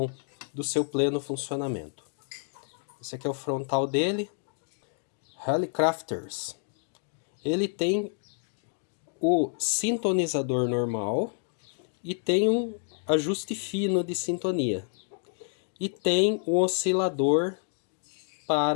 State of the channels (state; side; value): silent; right; 58 dB below the other